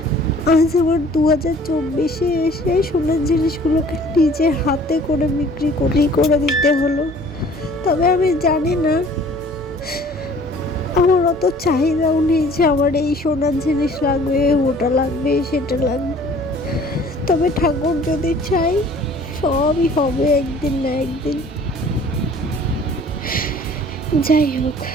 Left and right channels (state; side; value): normal; both; correlation 0.52